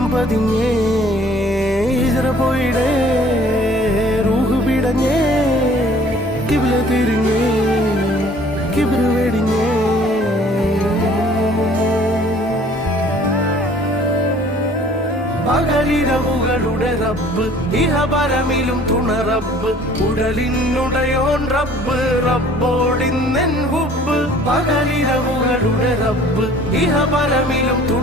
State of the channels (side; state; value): both; normal; correlation 0.53